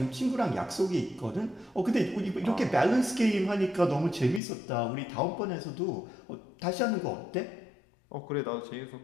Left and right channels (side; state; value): right; drops out; at 4.4 s